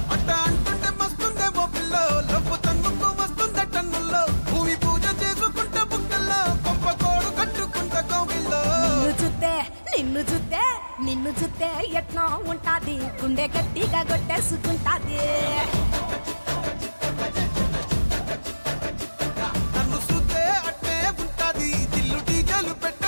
అట్ట అంటుంటే మస్తుందేమో పిల్లో లవ్వు తన్నుకు వస్తుందే టన్నుల్లో భూమి పూజ చేసుకుంటే బుక్కల్లో గొప్ప కోడు కట్టుకుంటే కోవిల్లో నిన్ను చూస్తే ఎట్నో ఉంటాది గుండె గట్టిగా కొట్టేసుకుంటాది నన్ను చూస్తే అట్టే ఉంటాది దిల్లు టీజలు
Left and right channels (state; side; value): inverted; both; correlation -1.00